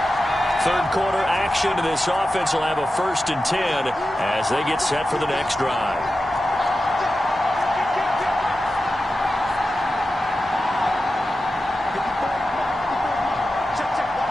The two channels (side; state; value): both; normal; correlation 0.92